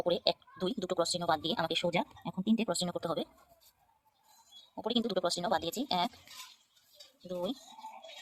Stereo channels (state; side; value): identical; both; correlation 1.00